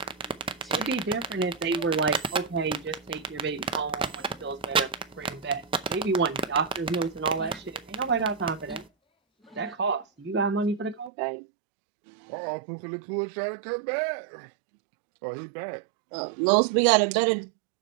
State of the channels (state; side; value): drops out; left; at 11.1 s